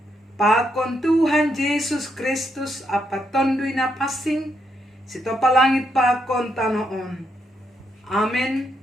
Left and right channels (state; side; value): normal; both; correlation 0.79